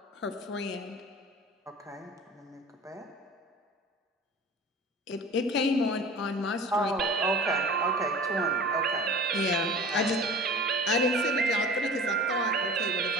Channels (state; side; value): normal; both; correlation 0.41